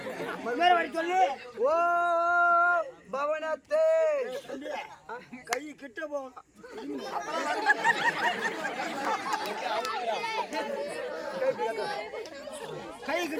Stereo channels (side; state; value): both; identical; correlation 1.00